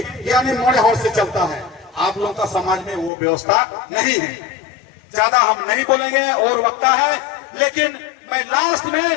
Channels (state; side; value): drops out; right; at 3.1 s